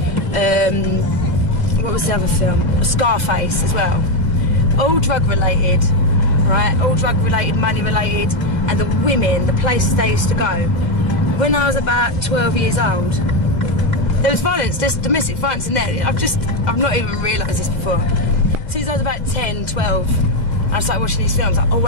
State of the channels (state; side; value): late; right; 2.1 ms